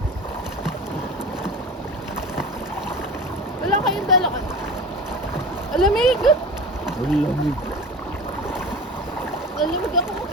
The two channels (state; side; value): normal; both; correlation 0.34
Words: Wala kayong dala ka. Alamig! Malamig. Alamig ako.